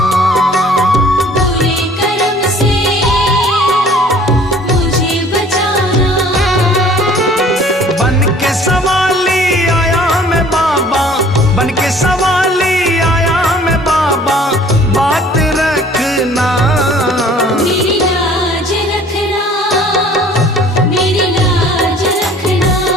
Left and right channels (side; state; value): both; normal; correlation 0.52